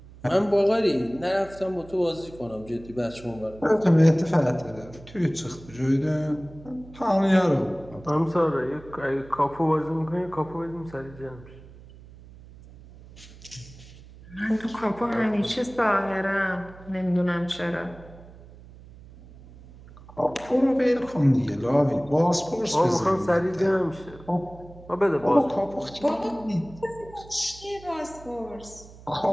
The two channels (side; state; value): right; noise; hum, 20 dB below the sound